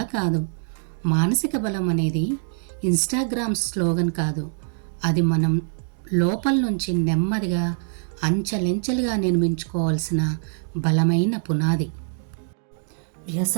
కాదు. మానసిక బలం అనేది ఇన్స్టాగ్రామ్ స్లోగన్ కాదు, అది మనం లోపల నుంచి నెమ్మదిగా అంచెలంచెలుగా నిర్మించుకోవాల్సిన బలమైన పునాది.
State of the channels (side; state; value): left; silent; 63 dB below the other